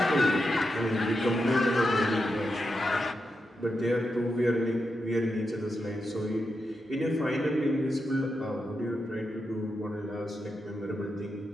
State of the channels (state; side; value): normal; both; correlation 0.87